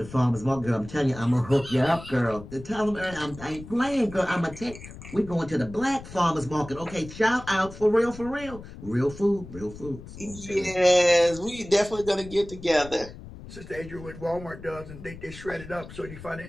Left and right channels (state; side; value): noise; left; rumble, 15 dB below the sound